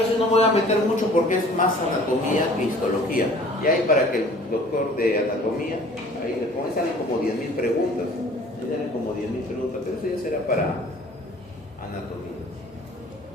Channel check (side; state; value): both; normal; correlation 0.50